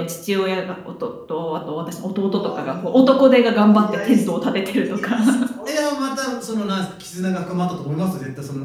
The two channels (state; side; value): identical; both; correlation 1.00